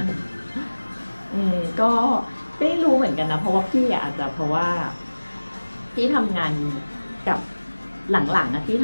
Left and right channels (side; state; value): both; inverted; correlation -1.00